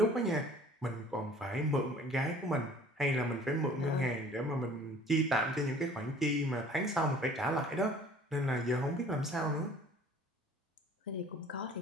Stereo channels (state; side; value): normal; both; correlation 0.50